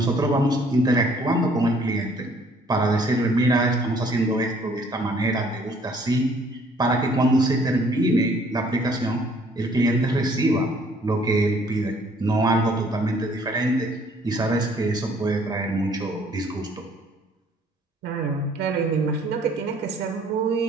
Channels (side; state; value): both; normal; correlation 0.60